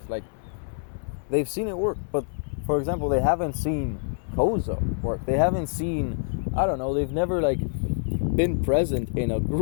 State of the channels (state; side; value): silent; right; 57 dB below the other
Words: Like, they've seen it work. But, for example, they haven't seen Koza work. They haven't seen, I don't know, they've never, like, been present in a